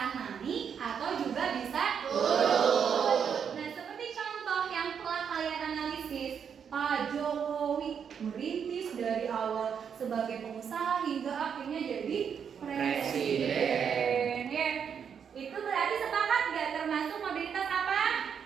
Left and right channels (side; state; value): left; quieter; 7.4 dB